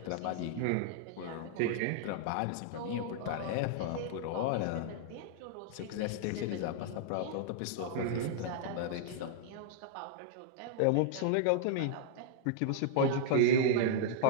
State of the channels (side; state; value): both; different; correlation -0.01